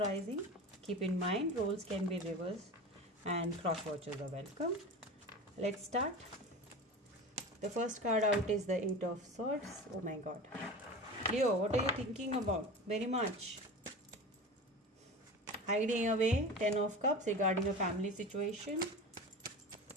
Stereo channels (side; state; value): both; normal; correlation 0.31